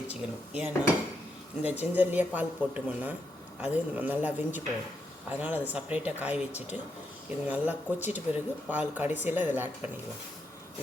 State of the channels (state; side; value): normal; both; correlation 0.81